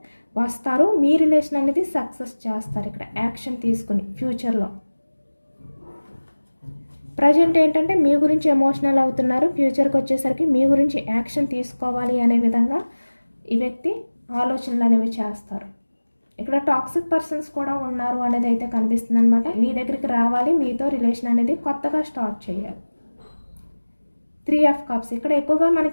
వస్తారు. మీ రిలేషన్ అనేది సక్సెస్ చేస్తారు ఇక్కడ యాక్షన్ తీసుకుని. ఫ్యూచర్లో ప్రజెంట్ ఏంటంటే మీ గురించి ఎమోషనల్ అవుతున్నారు, ఫ్యూచర్కి వచ్చేసరికి మీ గురించి యాక్షన్ తీసుకోవాలి అనే విధంగా ఈ వ్యక్తి ఆలోచనలు అనేవి చేస్తారు. ఇక్కడ టాక్సిక్ పర్సన్స్ కూడా ఉన్నారు అనేది అయితే కనిపిస్తుంది అనమాట. మీ దగ్గరికి రావాలి, మీతో రిలేషన్ అనేది కొత్తగా స్టార్ట్ చేయాలి. 3 ఆఫ్ కప్స్, ఇక్కడ ఎక్కువగా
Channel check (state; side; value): inverted; both; correlation -1.00